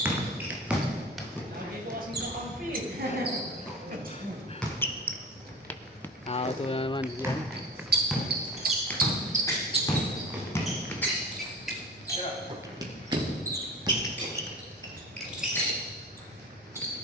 Ito na naman diyan.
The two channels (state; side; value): normal; both; correlation 0.35